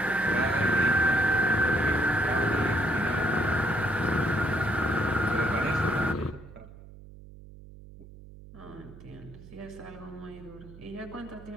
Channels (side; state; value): right; noise; hum, 18 dB below the sound